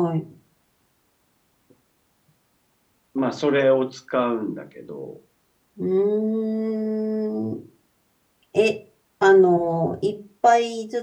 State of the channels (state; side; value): identical; both; correlation 1.00